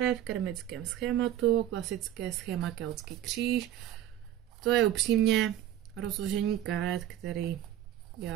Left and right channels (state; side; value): quieter; left; 11.9 dB